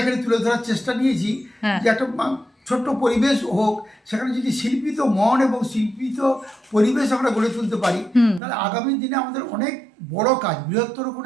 তুলে ধরার চেষ্টা নিয়েছি, হ্যাঁ। যে একটা ছোট্ট পরিবেশ হোক, সেখানে যদি শিল্পিত মন এবং শিল্পিত পরিবেশ আমরা গড়ে তুলতে পারি, তাহলে আগামী দিনে আমাদের অনেক বড় কাজ, বৃহত্তর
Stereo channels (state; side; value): drops out; left; at 8.4 s